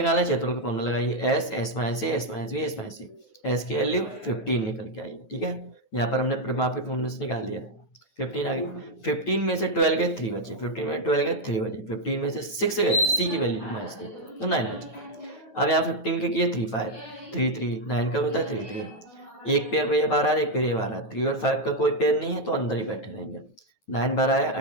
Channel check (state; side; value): late; right; 9.1 ms